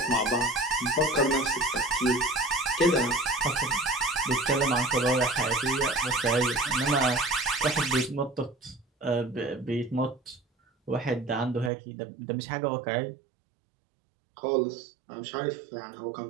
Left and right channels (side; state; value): left; drops out; at 11.7 s